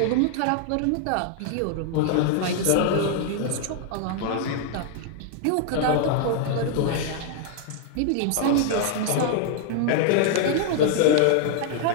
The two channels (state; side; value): different; both; correlation 0.00